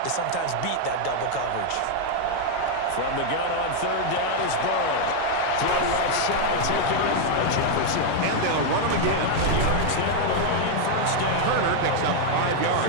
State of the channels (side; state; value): both; different; correlation 0.00